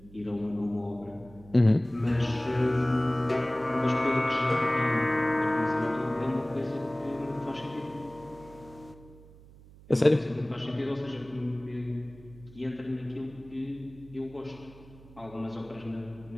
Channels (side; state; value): right; noise; hum, 21 dB below the sound